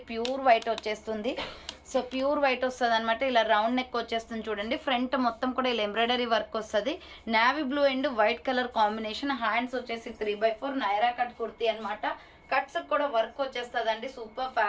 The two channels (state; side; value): identical; both; correlation 1.00